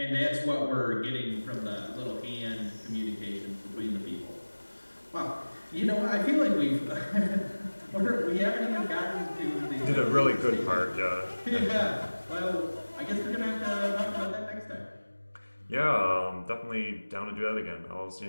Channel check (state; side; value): inverted; both; correlation -1.00